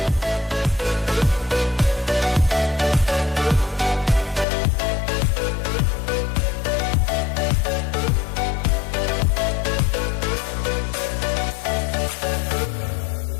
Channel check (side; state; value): right; drops out; at 4.5 s